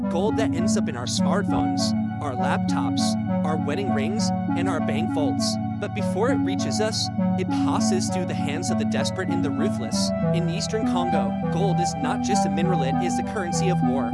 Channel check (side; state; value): both; identical; correlation 1.00